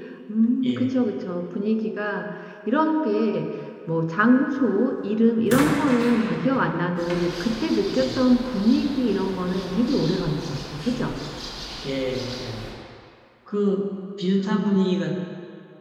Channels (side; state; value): both; identical; correlation 1.00